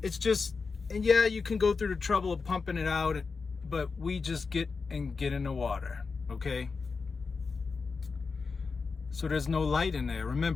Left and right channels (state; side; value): quieter; right; 4.7 dB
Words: It's just, and yeah, you can go through the trouble of pumping it out, but we just get in the water, okay? So there's no light in there.